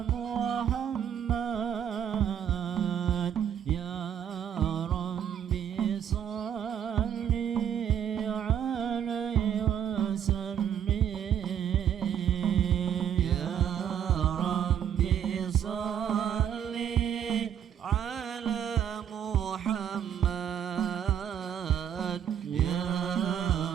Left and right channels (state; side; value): quieter; left; 9.2 dB